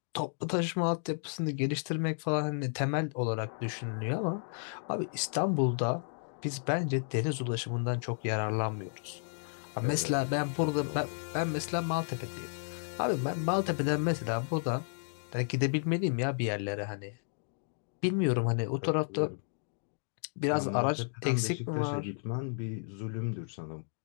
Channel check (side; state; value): right; silent; digital silence